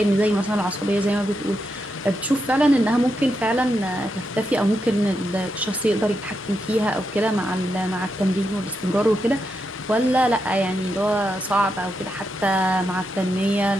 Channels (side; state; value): both; normal; correlation 0.84